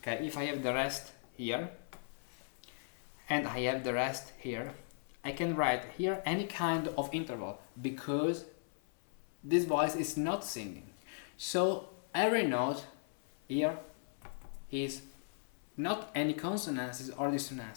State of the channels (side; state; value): right; silent; 53 dB below the other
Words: if I have the rest here and I have the rest here, I can write here any kind of interval because this voice is not singing. So every note here is not any consonances or